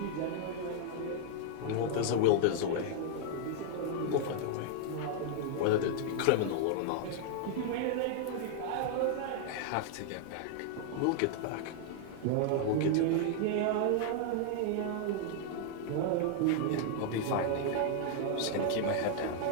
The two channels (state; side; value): different; both; correlation 0.00